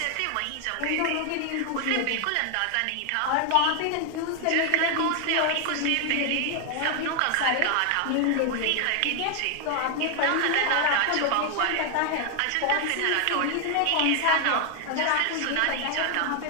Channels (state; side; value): different; both; correlation 0.00